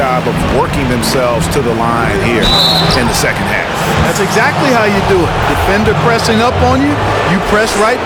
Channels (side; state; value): both; identical; correlation 1.00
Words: of working themselves to the line here in the second half. That's exactly how you do it. Defender pressing up on you, you press right